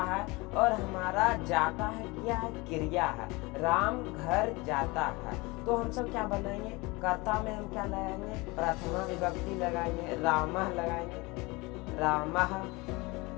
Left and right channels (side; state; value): right; quieter; 24.3 dB